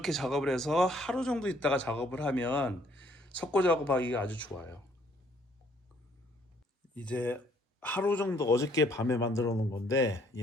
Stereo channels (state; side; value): normal; both; correlation 0.64